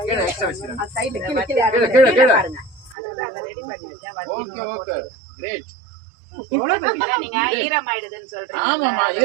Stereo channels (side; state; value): left; drops out; at 3.0 s